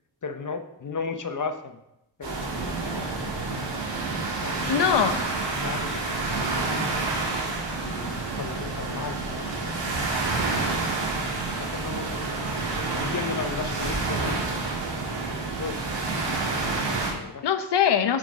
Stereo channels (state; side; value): normal; both; correlation 0.07